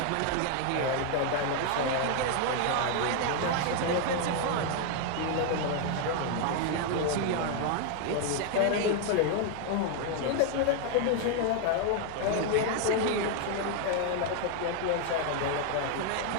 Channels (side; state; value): both; different; correlation 0.00